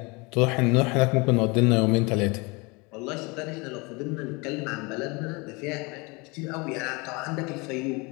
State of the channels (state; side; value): quieter; right; 27.4 dB